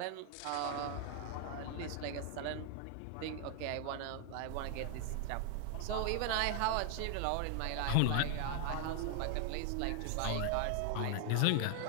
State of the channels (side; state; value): both; different; correlation 0.00